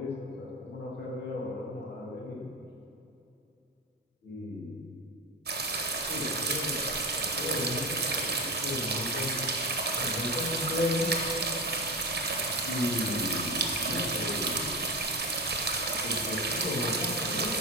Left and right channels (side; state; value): both; normal; correlation 0.21